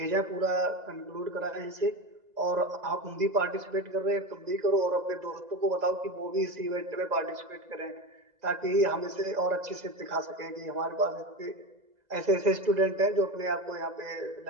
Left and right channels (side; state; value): left; late; 2.0 ms